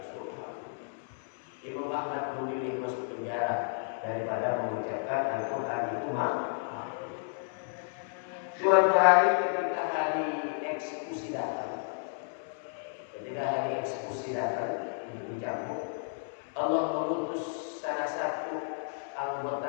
Imam Ahmad memilih masuk penjara daripada mengucapkan Al-Quran itu makhluk. Suatu hari ketika hari eksekusi datang, dicambuk, Allah mengutus salah satu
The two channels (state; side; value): silent; right; 56 dB below the other